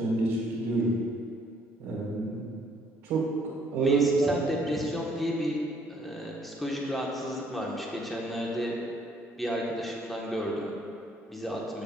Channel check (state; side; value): normal; both; correlation 0.65